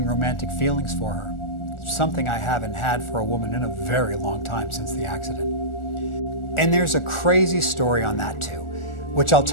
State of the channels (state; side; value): late; right; 1.4 ms